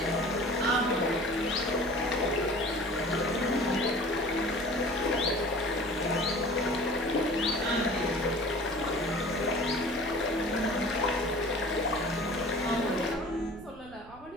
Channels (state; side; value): noise; right; rumble, 21 dB below the sound